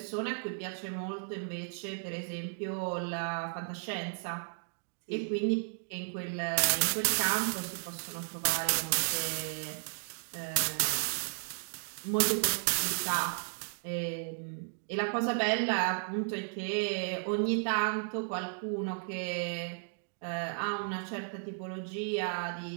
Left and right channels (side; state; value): left; silent; 55 dB below the other